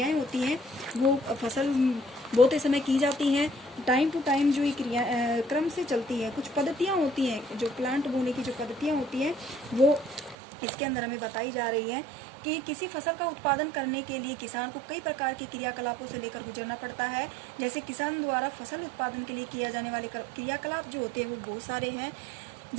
होती हैं वो फसल बोते समय की जाती हैं। टाइम टू टाइम जो ये क्रिया क्रम से चलती है। कुछ पद्धतियां होती हैं, जो प्लांट बोने की जो पद्धतियां होती हैं वो इसके अंदर हमें बताई जा रही है कि किसी फसल का उत्पादन करने के लिए किसान को कई प्रकार के क्रियाकलापों से लेकर गुजरना पड़ता है। जैसे किसान द्वारा फसल उत्पादन के लिए किया जाने वाले क्रियाकलाप जो होते हैं वो बहुत सारे हैं।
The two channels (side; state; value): left; drops out; at 10.4 s